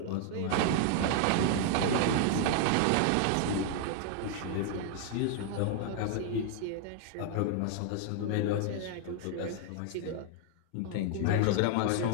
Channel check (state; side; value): different; both; correlation 0.00